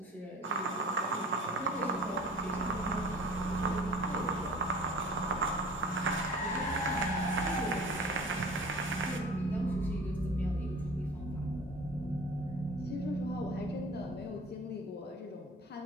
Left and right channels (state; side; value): normal; both; correlation 0.44